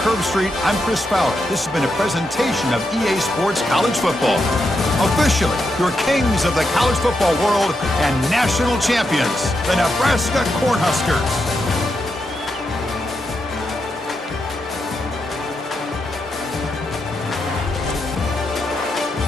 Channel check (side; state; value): both; normal; correlation 0.84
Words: Herbstreit, I'm Chris Fowler. This has been a presentation of EA Sports College Football. Officially, your kings of the college football world and national champions, the Nebraska Cornhuskers.